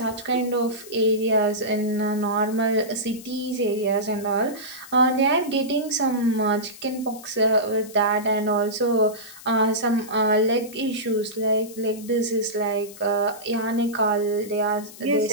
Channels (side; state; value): left; noise; hiss, 18 dB below the sound